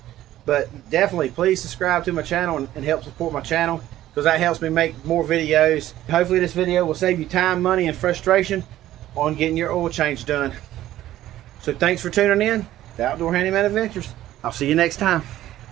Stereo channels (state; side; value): quieter; left; 13.8 dB